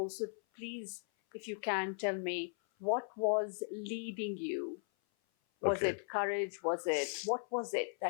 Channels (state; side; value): silent; right; 53 dB below the other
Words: please, if you can, tell me, what was leading you? Was Okay. it courage? What was it